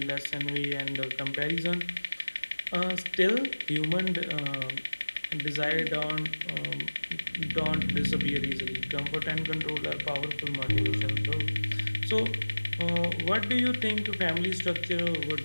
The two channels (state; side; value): inverted; both; correlation -1.00